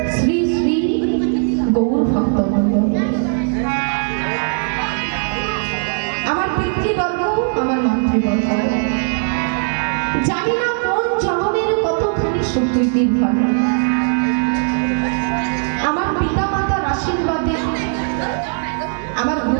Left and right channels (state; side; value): silent; left; digital silence